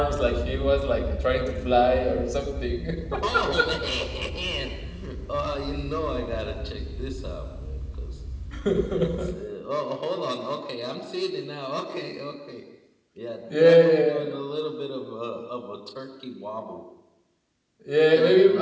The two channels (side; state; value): both; identical; correlation 1.00